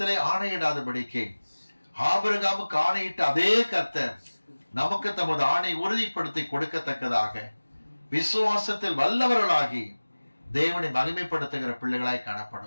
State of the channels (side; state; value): both; inverted; correlation -1.00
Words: ஆணையிடாதபடிக்கு ஆபிரகாமுக்கு ஆணையிட்ட அதே கர்த்தர் நமக்கு தமது ஆணை உறுதிப்படுத்தி கொடுக்கத்தக்கதாக விசுவாசத்தில் வல்லவர்களாகி தேவனை மகிமைப்படுத்துகிற பிள்ளைகளாய்